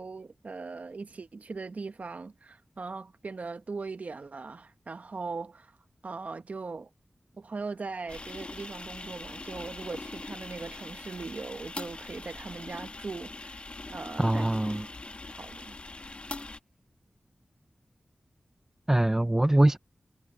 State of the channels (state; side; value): normal; both; correlation 0.97